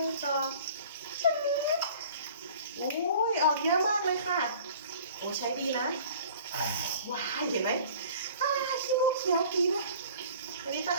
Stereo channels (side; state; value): both; inverted; correlation -0.47